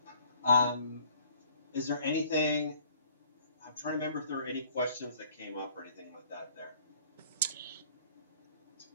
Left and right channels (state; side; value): inverted; both; correlation -0.57